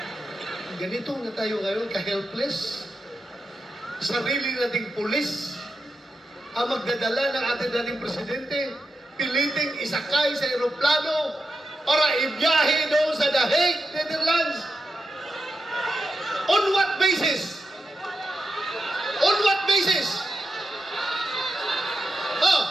ganito na tayo ngayon, ka-helpless. Sarili nating pulis ang magdadala ng ating dating presidente, piliting isakay sa aeroplano para ibiyahe doon sa The Hague, Netherlands. On what basis? On what basis?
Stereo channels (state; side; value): normal; both; correlation 0.88